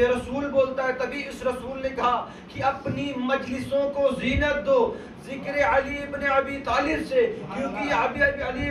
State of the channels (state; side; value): identical; both; correlation 1.00